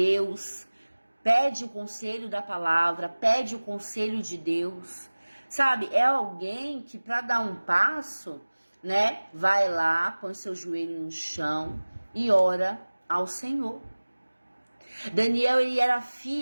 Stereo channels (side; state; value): both; inverted; correlation -1.00